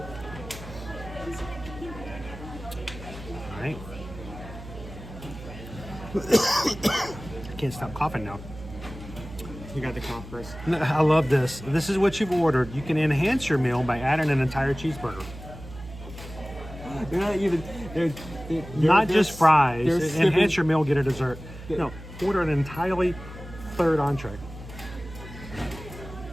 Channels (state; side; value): noise; right; hum, 14 dB below the sound